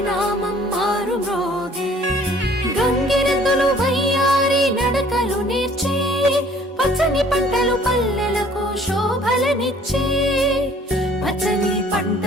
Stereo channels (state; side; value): normal; both; correlation 0.55